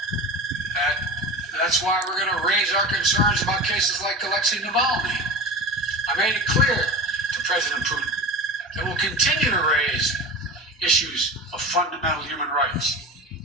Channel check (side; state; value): both; normal; correlation 0.31